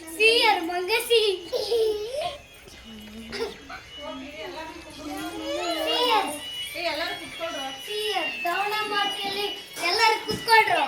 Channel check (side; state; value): both; identical; correlation 1.00